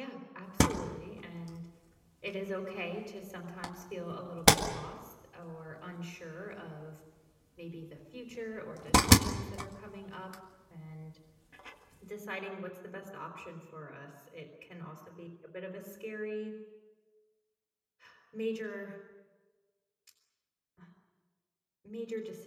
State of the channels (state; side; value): identical; both; correlation 1.00